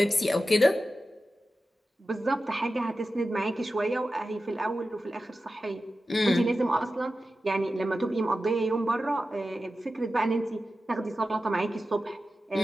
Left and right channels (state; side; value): normal; both; correlation 0.93